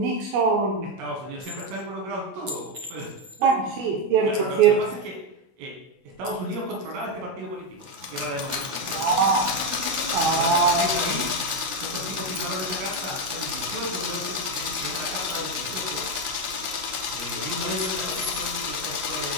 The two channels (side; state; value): left; late; 16 ms